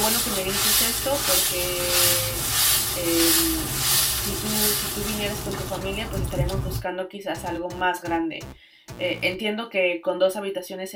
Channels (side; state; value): both; identical; correlation 1.00